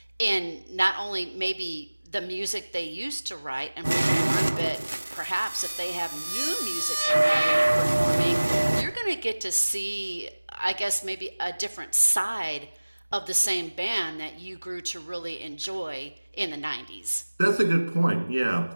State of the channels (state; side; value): inverted; both; correlation -1.00